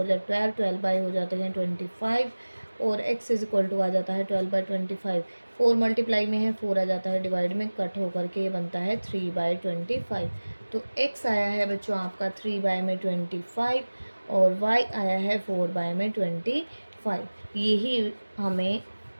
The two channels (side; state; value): both; inverted; correlation -1.00